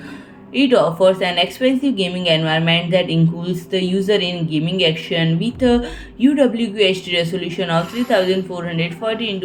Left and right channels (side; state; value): both; identical; correlation 1.00